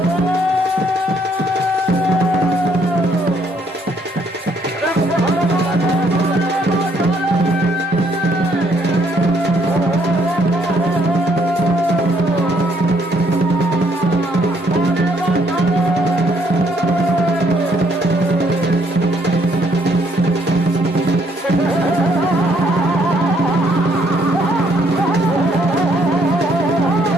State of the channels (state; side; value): normal; both; correlation 0.68